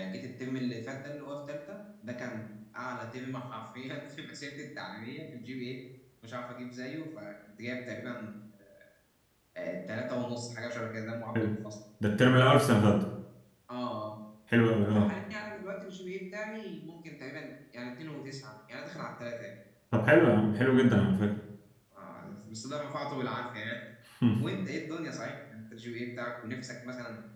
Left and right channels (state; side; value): identical; both; correlation 1.00